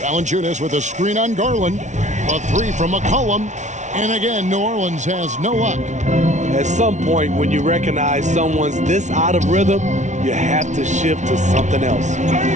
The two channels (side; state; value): left; late; 0.35 ms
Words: with a screen on Garland. A 3 from McCollum. And again, New Orleans has no luck. At some point, when you recognize someone's this out of rhythm, you have to shift to something else.